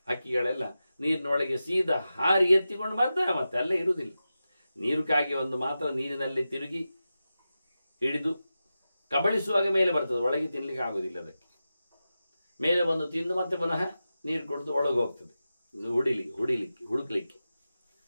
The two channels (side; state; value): both; inverted; correlation -0.92